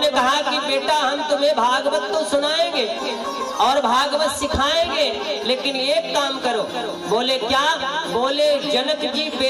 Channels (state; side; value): identical; both; correlation 1.00